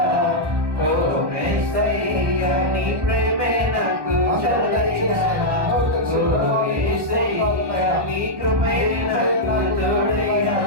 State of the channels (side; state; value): left; late; 1.1 ms